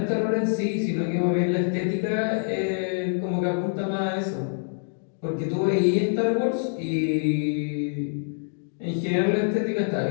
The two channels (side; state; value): right; silent; digital silence